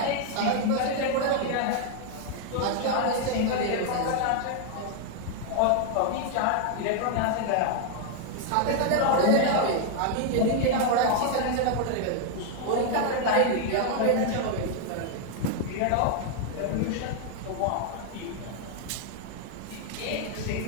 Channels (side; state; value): both; different; correlation 0.00